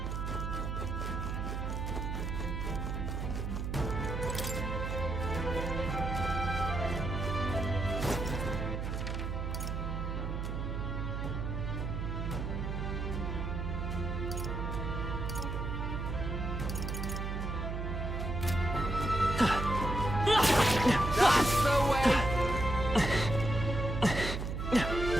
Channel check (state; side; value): noise; right; hum, 3 dB below the sound